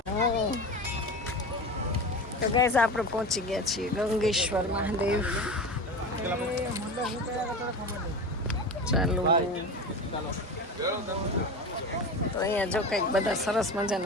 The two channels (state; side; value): normal; both; correlation 0.28